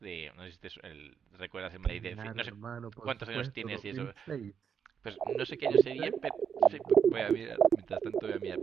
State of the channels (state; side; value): quieter; left; 7.2 dB